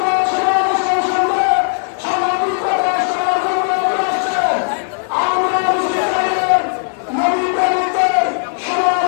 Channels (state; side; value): silent; right; digital silence